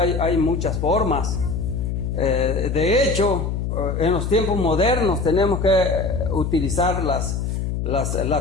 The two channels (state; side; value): noise; left; hum, 2 dB below the sound